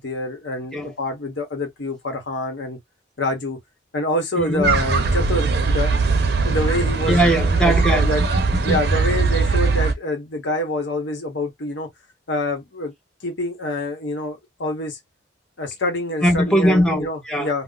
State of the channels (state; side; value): normal; both; correlation 0.54